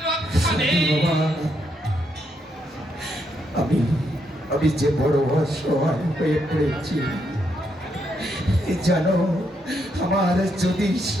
রক্ষা নেই। আমি যে বড় অসহায় হয়ে পড়েছি জানো, আমার যদি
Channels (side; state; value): both; normal; correlation 0.78